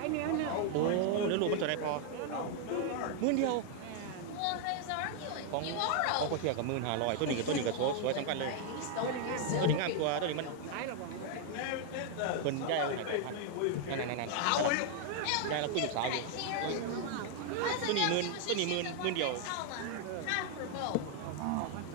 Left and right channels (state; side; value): different; both; correlation 0.00